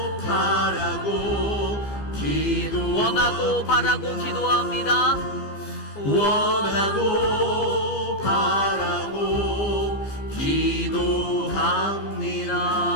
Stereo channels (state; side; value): late; right; 15 ms